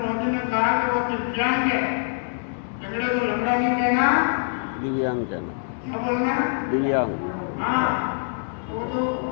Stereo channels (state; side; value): silent; right; digital silence